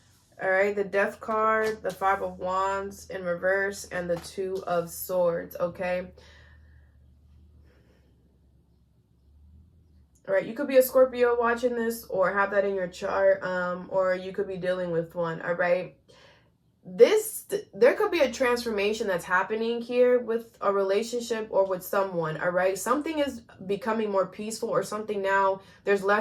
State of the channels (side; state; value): both; identical; correlation 1.00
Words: All right, the Death card, the Five of Wands in reverse, and the Two of Swords, okay? All right, you could be a Scorpio watching this or have that in your chart, or you could be dealing with one, all right? There could be a transformation that's happening here with a relationship or with someone, all right? Something is becoming more peaceful, or something now, there's